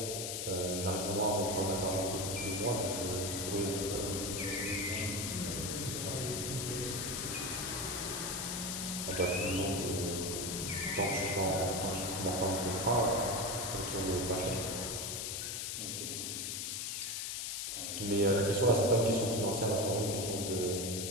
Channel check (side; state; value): left; noise; hiss, 3 dB below the sound